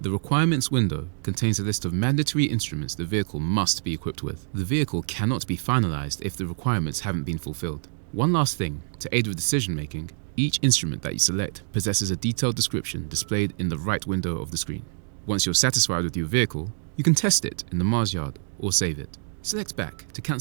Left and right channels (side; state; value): left; silent; digital silence